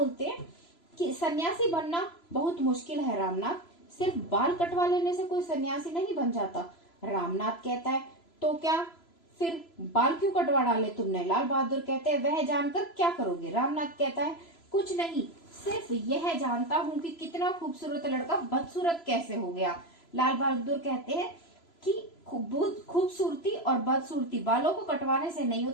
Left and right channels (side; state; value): right; late; 3.0 ms